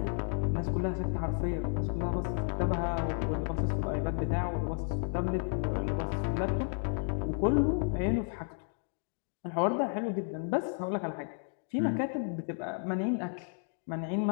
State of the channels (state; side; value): silent; right; 56 dB below the other